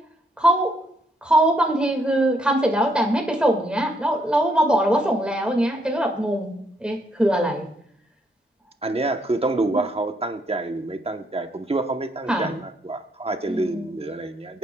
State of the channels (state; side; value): normal; both; correlation 0.72